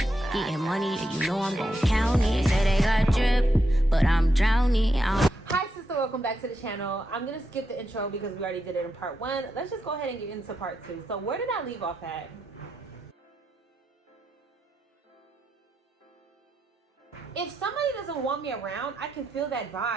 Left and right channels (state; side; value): normal; both; correlation 0.84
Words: Getting money, and you know I'm gon' count it. They say they got drip, but I'm drowning. Hi sister, welcome back to the channel. I'm gonna skip the intro because we already did it in part 1. Let's just go ahead and get into part 2. So where did I leave off at? If somebody doesn't want me around, I can feel that